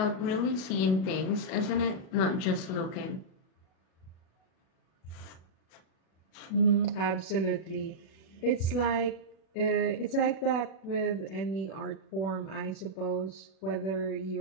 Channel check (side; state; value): right; late; 37 ms